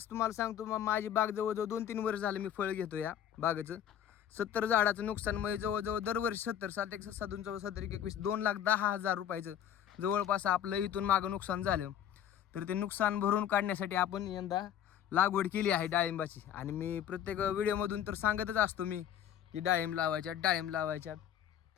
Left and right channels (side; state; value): right; quieter; 10.0 dB